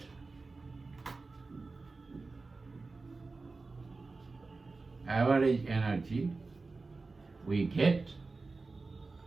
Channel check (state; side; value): quieter; left; 3.8 dB